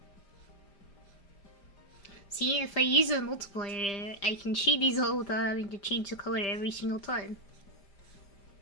See, if I use a multiplier, I can cheat these all without having to change the color every single time.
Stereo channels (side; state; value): right; late; 5.0 ms